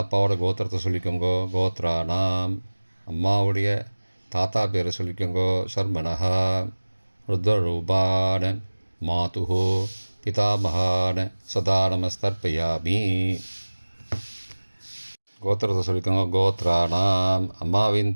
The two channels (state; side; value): inverted; both; correlation -1.00